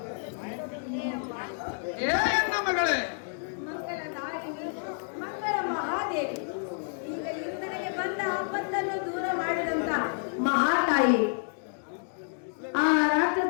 ಹೇಯಮ್ಮ ಏ ಎನ್ನ ಮಗಳೇ, ಮಂಗಲ ನಾರಿಣಿ, ಮಂಗಲ ಮಹಾದೇವಿ, ಈಗ ಇಂದನಿಗೆ ಬಂದ ಆಪತ್ತನ್ನು ದೂರ ಮಾಡಿದಂತ ಮಹಾತಾಯಿ, ಆ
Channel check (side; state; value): right; silent; digital silence